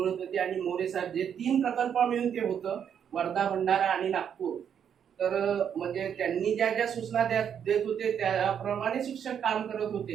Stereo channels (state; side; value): quieter; left; 8.3 dB